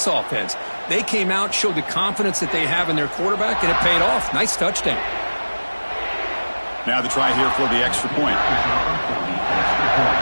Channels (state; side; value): inverted; both; correlation -1.00